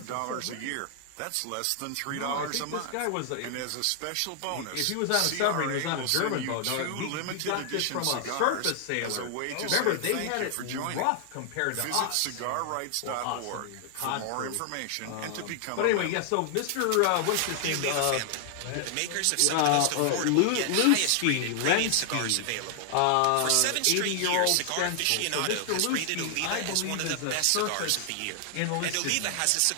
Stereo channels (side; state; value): both; different; correlation 0.00